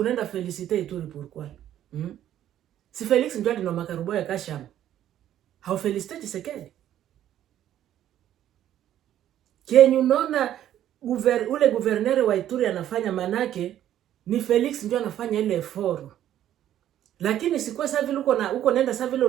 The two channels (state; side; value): quieter; left; 11.6 dB